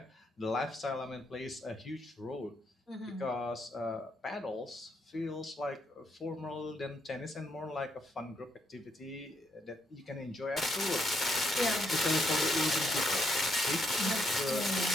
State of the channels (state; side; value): normal; both; correlation 0.76